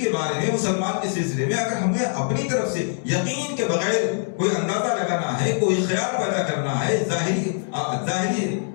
بارے میں مسلمان کے سلسلے میں اگر ہمیں اپنی طرف سے یقین کے بغیر کوئی اندازہ لگانا ہے، کوئی خیال پیدا کرنا ہے ظاہری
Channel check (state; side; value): silent; right; digital silence